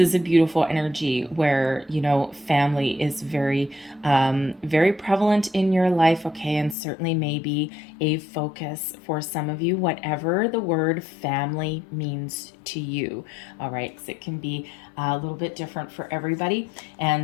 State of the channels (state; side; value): drops out; right; at 6.8 s